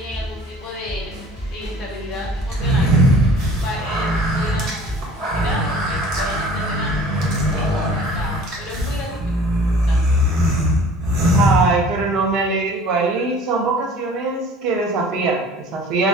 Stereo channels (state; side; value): normal; both; correlation 0.47